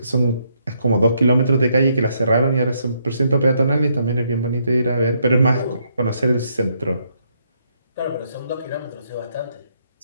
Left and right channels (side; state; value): both; inverted; correlation -0.74